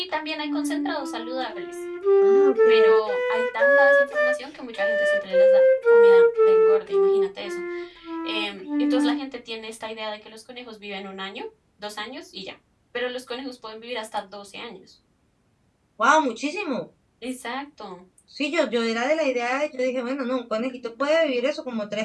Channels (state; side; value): identical; both; correlation 1.00